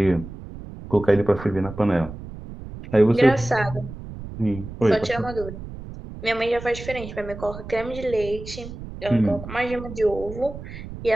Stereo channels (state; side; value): noise; right; rumble, 12 dB below the sound